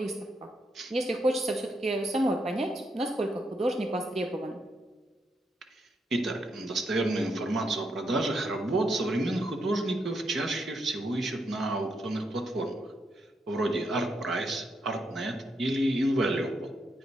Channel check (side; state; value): both; normal; correlation 0.80